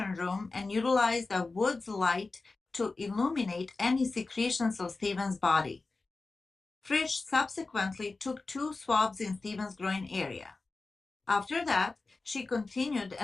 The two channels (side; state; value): right; quieter; 3.7 dB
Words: room and utilized a Woods light to illuminate any secretions of Stephen's body. Frisch subsequently took 2 swabs in Stephen's groin area. After that, she continued